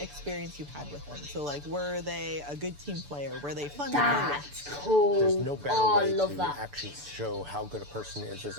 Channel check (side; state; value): left; late; 6.9 ms